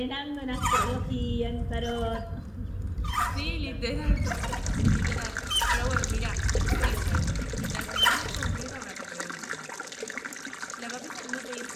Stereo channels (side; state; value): both; identical; correlation 1.00